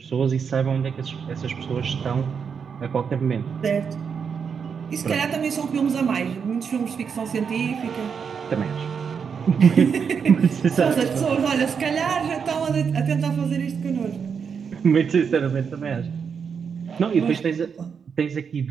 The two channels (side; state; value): left; quieter; 6.5 dB